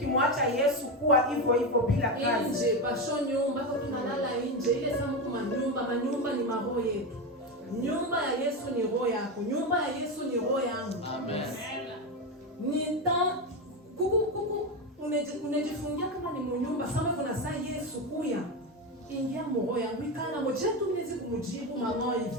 Yesu kuwa hivyo bila kazi. Nje pasho nyumba kwa tunalala nje, ile samu kwa manyumba ni maroho yetu. Nyumba ya Yesu ni roho yako, nyumba ya Yesu ni roho yangu. Amen. Nita kuku unajifungia kama ni mnyumba sama kuna saa Yesu kuya. Ingia roho yangu ikana moja tu mnezi kumjibu mama hivi.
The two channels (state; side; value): normal; both; correlation 0.15